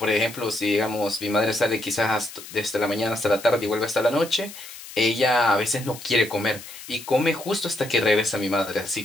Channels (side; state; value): left; noise; hiss, 15 dB below the sound